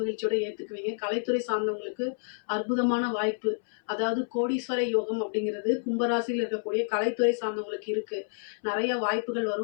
மகிழ்ச்சியோட ஏத்துக்குவீங்க. கலைத்துறை சார்ந்தவங்களுக்கு அற்புதமான வாய்ப்பு, அதாவது கோடீஸ்வர யோகம் அப்படிங்கிறது கும்பராசியில் இருக்கக்கூடிய கலைத்துறை சார்ந்தவங்களுக்கு இருக்கு. நிறைய வாய்ப்புகள்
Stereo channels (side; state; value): right; silent; 59 dB below the other